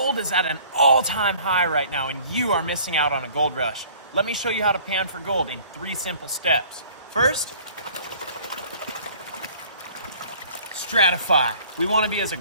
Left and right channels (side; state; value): both; inverted; correlation -0.52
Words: is at an all-time high right now, and you are missing out on a gold rush. Let me show you how to pan for gold in 3 simple steps. First, stratify. We want to be as